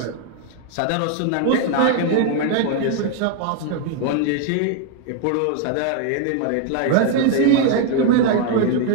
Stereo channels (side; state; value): both; different; correlation 0.00